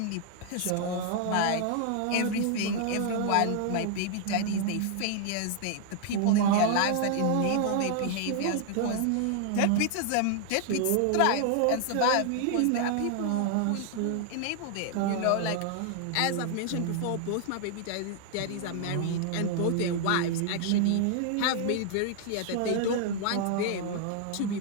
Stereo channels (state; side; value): different; both; correlation 0.00